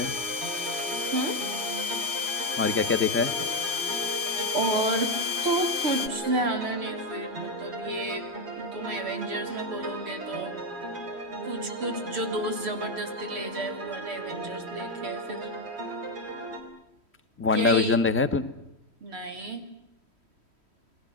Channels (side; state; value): left; late; 3.1 ms